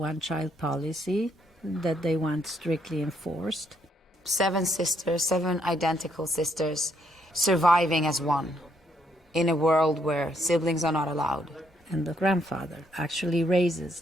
policy that they want strictly enforced. 7 sisters, 7 identical sisters, surviving as one in a world where siblings are not allowed. And the grandfather actually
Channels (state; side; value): normal; both; correlation 0.73